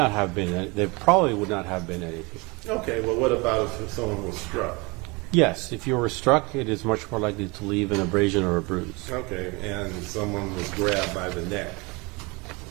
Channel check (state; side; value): quieter; left; 27.0 dB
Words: have been, there probably would not have been anything. Okay, well, what about if someone was struck? Yes, if you were struck, it is much more likely to leave an abrasion or a bruise. Okay, and someone was grabbed by the neck.